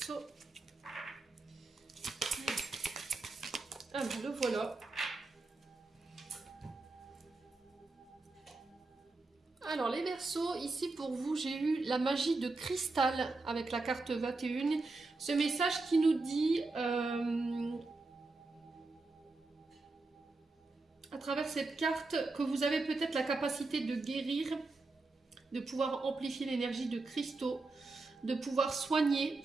Ah, le voilà. Alors les Verseaux, ici pour vous, j'ai eu la magie de cristal avec la carte 21. Ce message qui nous dit, à travers cette carte, que vous avez peut-être la capacité de guérir, de pouvoir amplifier l'énergie de cristaux, de pouvoir soigner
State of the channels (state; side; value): quieter; left; 3.5 dB